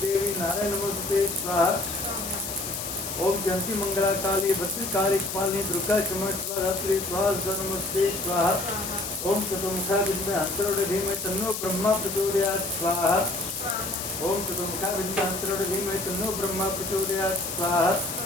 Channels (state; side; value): noise; left; hiss, 6 dB below the sound